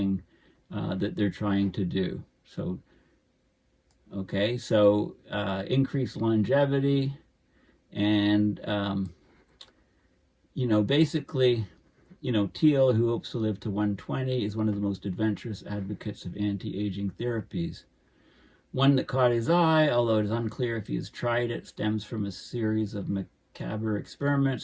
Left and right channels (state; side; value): identical; both; correlation 1.00